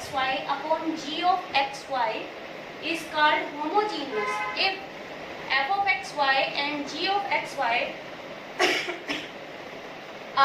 upon g of xy is called homogeneous if f of xy and g of xy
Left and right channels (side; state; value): both; identical; correlation 1.00